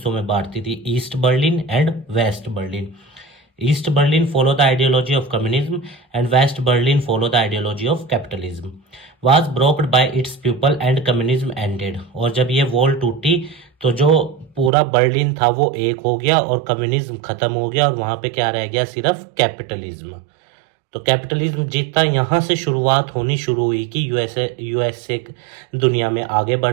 में बांटती थी, East Berlin and West Berlin. East Berlin follow the ideology of communism and West Berlin follow the ideology of capitalism. Was broken by its people and communism ended. और जब ये वॉल टूटी तो जो पूरा बर्लिन था वो एक हो गया और कम्युनिज्म खत्म हो गया और वहां पे क्या रह गया? सिर्फ कैपिटलिज्म. तो कैपिटलिज्म जीता. यहाँ से शुरुआत होनी शुरू हुई कि यूएसए दुनिया में आगे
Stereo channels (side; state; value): left; drops out; at 14.7 s